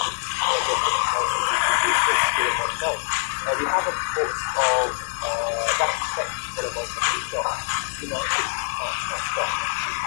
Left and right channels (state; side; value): silent; right; digital silence